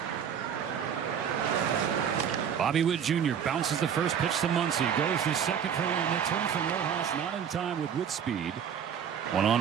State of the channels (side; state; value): left; quieter; 8.1 dB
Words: Bobby Witt Jr. bounces the first pitch to Muncy. Goes to second for one. They turn from Rojas, not in time with Witt speed. 1